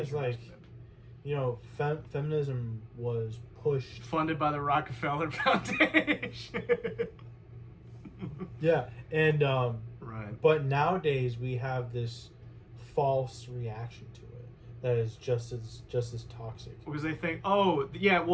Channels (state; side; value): identical; both; correlation 1.00